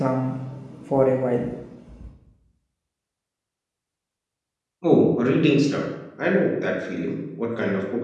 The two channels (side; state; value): both; identical; correlation 1.00